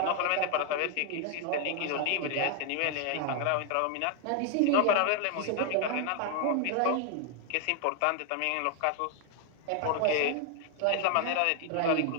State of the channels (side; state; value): both; different; correlation 0.00